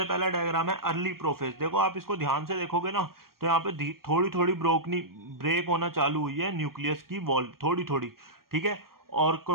पहला डायग्राम है अर्ली प्रोफेज. देखो आप इसको ध्यान से देखोगे ना, तो यहाँ पे थोड़ी थोड़ी ब्रेक होना चालू हुई है न्यूक्लियस की वॉल, थोड़ी थोड़ी. ठीक है. और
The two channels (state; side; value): late; left; 0.93 ms